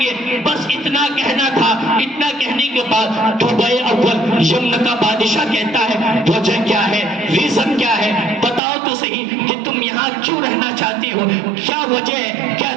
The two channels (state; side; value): drops out; left; at 8.6 s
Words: گے، بس اتنا کہنا تھا۔ اتنا کہنے کے بعد توبہ اول یمن کا بادشاہ کہتا ہے، وجہ کیا ہے، ریزن کیا ہے، بتاؤ تو صحیح کہ تم یہاں کیوں رہنا چاہتے ہو، کیا وجہ ہے، کیا